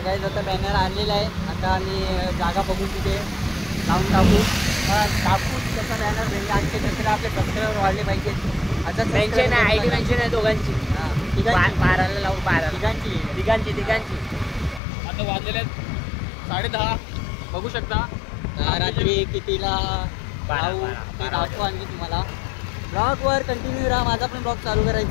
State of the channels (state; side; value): drops out; right; at 14.8 s